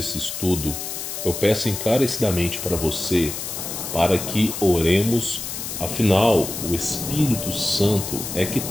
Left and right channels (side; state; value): left; noise; hiss, 6 dB below the sound